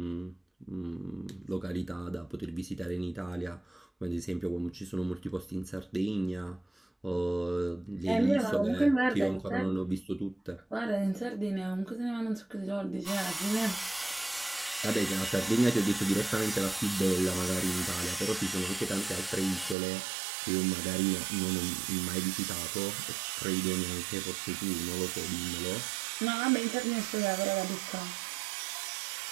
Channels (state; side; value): drops out; left; at 19.8 s